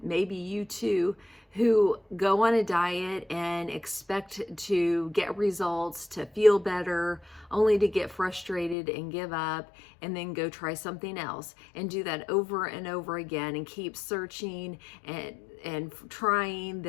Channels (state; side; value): drops out; right; at 8.8 s